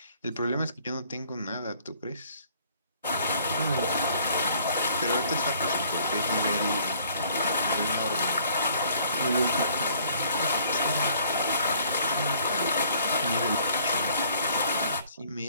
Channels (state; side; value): inverted; both; correlation -0.59